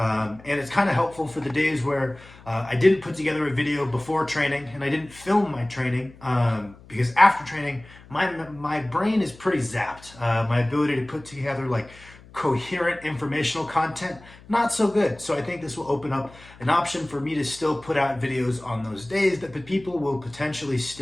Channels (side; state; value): left; noise; hum, 22 dB below the sound